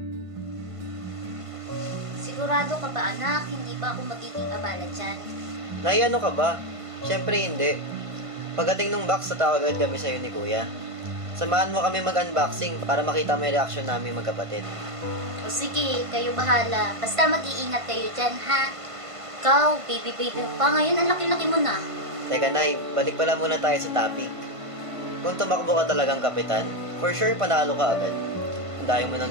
Sigurado ka ba anak, hindi ba ako magiging abala dyan? Nay, ano ka ba? Siyempre hindi. Pagdating ng box, tatawag agad kami sa'yo ni Kuya. Samahan mo kami mag-unboxing para makita mo yung reaction namin magkapatid. O sige, kayo bahala. Basta mag-iingat kayo dyan, ha? Ikaw, baby mo pa. Ngayon, ang laki-laki mo na. Teka Nay, balik pala muna tayo sa topic. Kung tumakbo ka talagang kapitan, for sure panalo ka agad. Ang dami mo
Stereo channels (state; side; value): late; left; 1.5 ms